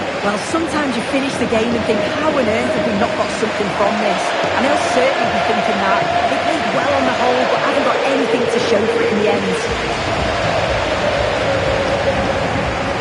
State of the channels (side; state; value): both; identical; correlation 1.00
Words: Well, sometimes you finish the game and think, how on earth have we not got something from this? And they'll certainly be thinking that. They played well on the whole, but haven't got anything to show for it in the end.